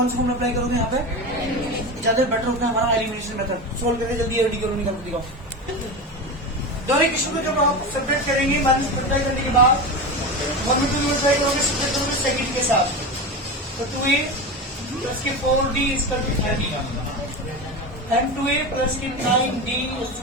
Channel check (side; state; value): both; normal; correlation 0.22